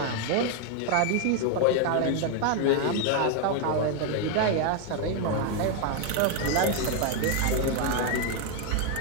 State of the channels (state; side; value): different; both; correlation 0.01